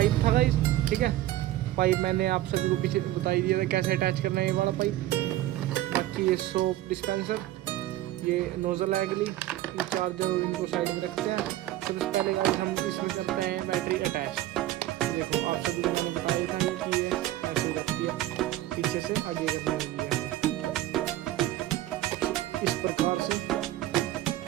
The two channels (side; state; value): left; quieter; 14.8 dB